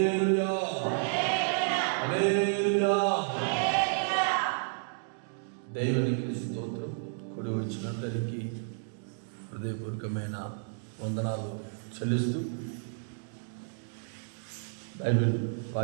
హల్లెలూయా. దేవునికి స్తోత్రం. కూడి వచ్చినందరికీ హృదయపూర్వకమైన వందనాలు చెల్లిస్తూ బైబిల్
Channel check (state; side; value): silent; left; digital silence